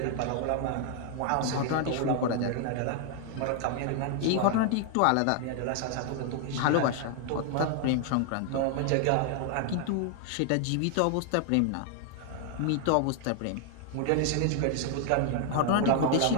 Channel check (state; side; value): different; both; correlation 0.00